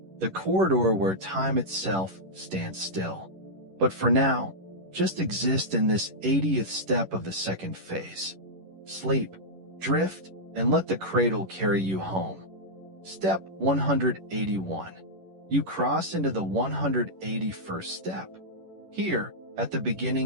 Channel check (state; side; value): late; left; 11 ms